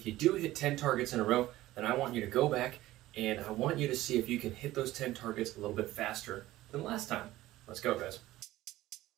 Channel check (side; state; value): left; quieter; 16.2 dB